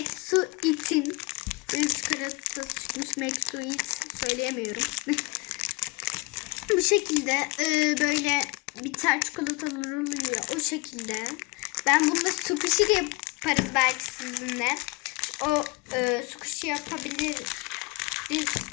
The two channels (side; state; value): right; quieter; 26.2 dB